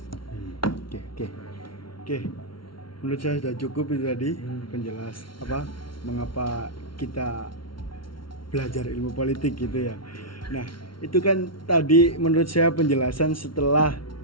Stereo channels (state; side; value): late; right; 0.74 ms